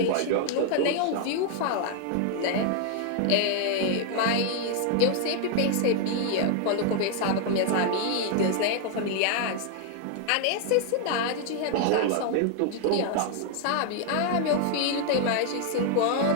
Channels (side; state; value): both; different; correlation 0.00